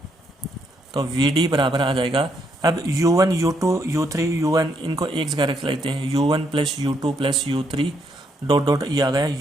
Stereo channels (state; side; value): normal; both; correlation 0.75